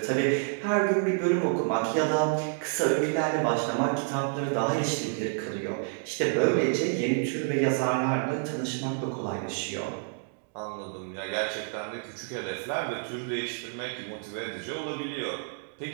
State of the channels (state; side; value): silent; left; 59 dB below the other